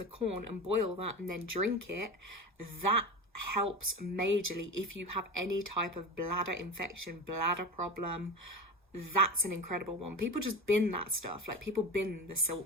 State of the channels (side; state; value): both; normal; correlation 0.27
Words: corn and boil that and then drink it, that helps majorly if you have any type of bladder infection, bladder problem. That's an incredible one. People just bin that stuff. Like, people bin the